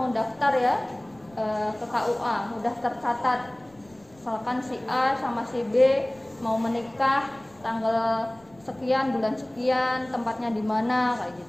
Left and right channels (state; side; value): noise; left; rumble, 29 dB below the sound